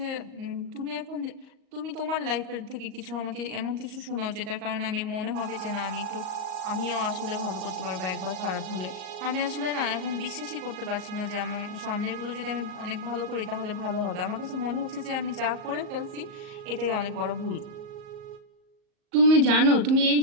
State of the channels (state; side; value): late; left; 38 ms